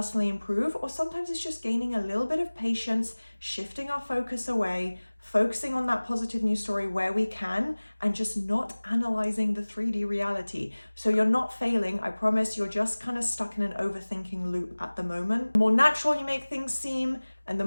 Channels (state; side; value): inverted; both; correlation -1.00